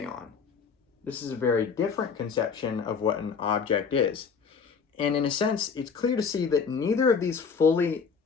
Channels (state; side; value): quieter; right; 5.8 dB